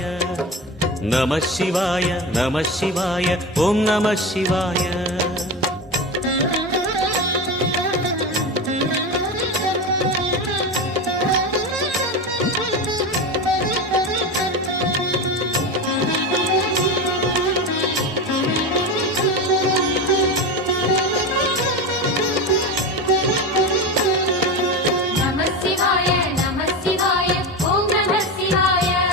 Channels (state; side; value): normal; both; correlation 0.22